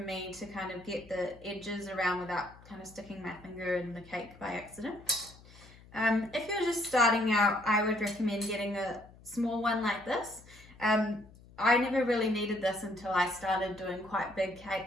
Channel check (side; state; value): left; noise; hum, 22 dB below the sound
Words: to kind of get the edges around without kind of sticking my finger in the cake by accident. If you're just starting out, I would recommend getting a small one like this. I never really needed this until I started doing quite big